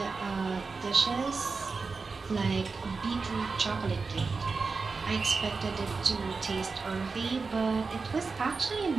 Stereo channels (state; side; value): quieter; left; 4.4 dB